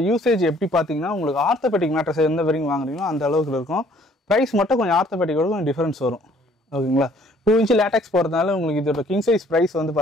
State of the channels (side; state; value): both; normal; correlation 0.60